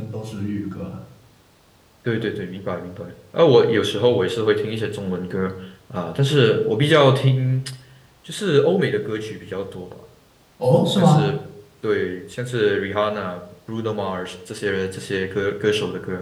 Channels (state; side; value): identical; both; correlation 1.00